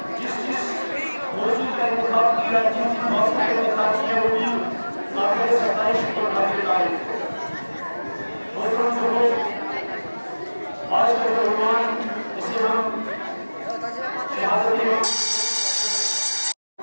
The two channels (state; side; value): inverted; both; correlation -1.00